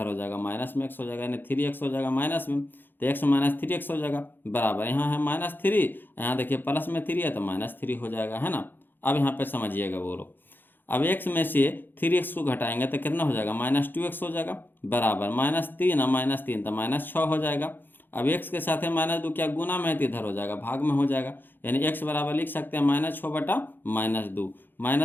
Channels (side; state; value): right; late; 0.095 ms